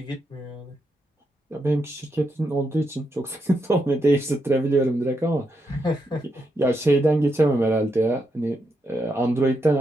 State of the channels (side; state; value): both; normal; correlation 0.82